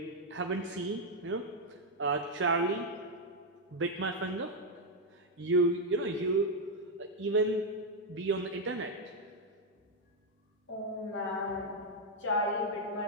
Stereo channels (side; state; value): both; normal; correlation 0.00